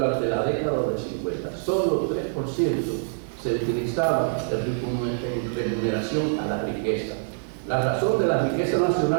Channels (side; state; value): left; silent; digital silence